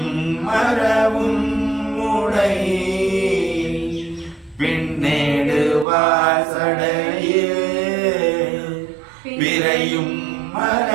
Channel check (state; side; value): drops out; left; at 5.9 s